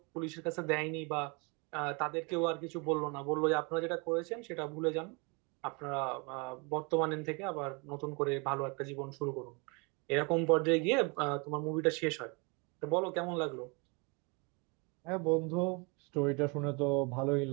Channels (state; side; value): quieter; left; 30.9 dB